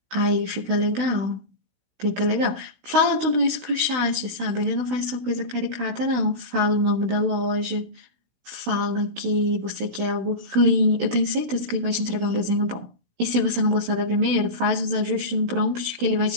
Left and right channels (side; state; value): left; late; 16 ms